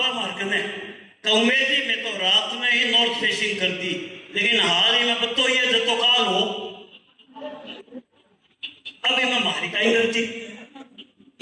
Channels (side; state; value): both; identical; correlation 1.00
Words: मार्ग ने उम्मीद ही में तो रात में ही नॉर्थ फेसिंग कर दी, लेकिन हाल ही में बतो ये जतो काल हो अभी मैं मारी का ही करती।